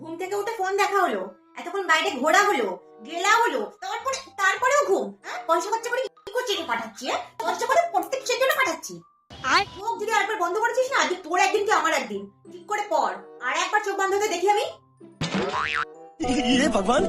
থেকে উঠে ফোন দেখা হলো, এতক্ষণ বাইরে ঘোরা হলো, গেলা হলো, তারপরেও ঘুম। পয়সা খরচা করে কি করছিস? পাঠাচ্ছি পয়সা করে প্রত্যেক জন্য পাঠাচ্ছি। আর চোখ যদি আরেকবার বন্ধ করেছিস না, আজকে তোর একদিন কি আমার একদিন, ঠিক করে পড়। আর একবার চোখ বন্ধ হতে দেখি আমি। ये भगवान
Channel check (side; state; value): both; identical; correlation 1.00